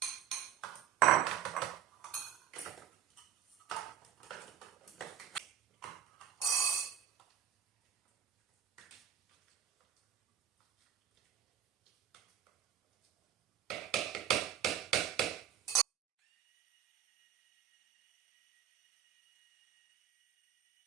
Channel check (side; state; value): left; quieter; 10.1 dB